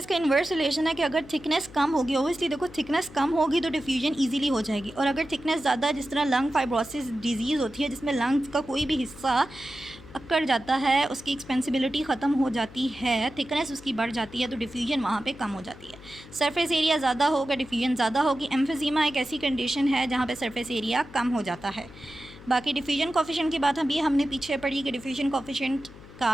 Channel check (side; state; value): left; noise; hum, 19 dB below the sound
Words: इन्वर्स रिलेशन है कि अगर थिकनेस कम होगी, ओबियसली देखो थिकनेस कम होगी तो डिफ्यूजन इजीली हो जाएगी, और अगर थिकनेस ज़्यादा, जिस तरह लंग फाइब्रोसिस डिजीज़ होती है जिसमें लंग्स का कोई भी हिस्सा अकड़ जाता है, उसकी एक्सपेंसिबिलिटी ख़त्म हो जाती है, थिकनेस उसकी बढ़ जाती है, तो डिफ्यूजन वहाँ पे कम हो जाती है। सरफेस एरिया ज़्यादा होगा, डिफ्यूजन ज़्यादा होगी। एम्फीज़ीमा एक ऐसी कंडीशन है जहाँ पे सरफेस एरिया कम हो जाता है। बाकी डिफ्यूजन कोफिशिएंट की बात अभी हमने पीछे पढ़ी कि डिफ्यूजन कोफिशिएंट